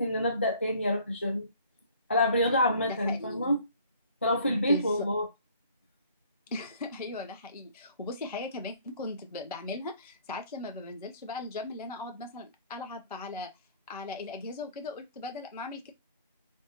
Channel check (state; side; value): inverted; both; correlation -0.57